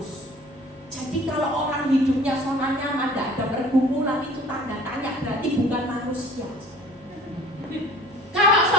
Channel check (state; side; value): noise; left; hum, 27 dB below the sound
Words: Jadi kalau orang hidupnya zona nyaman, tidak ada pergumulan, itu tanda tanya, berarti bukan manusia. Kalau